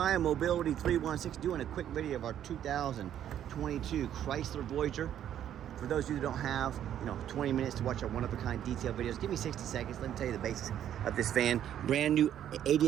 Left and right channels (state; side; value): quieter; left; 10.5 dB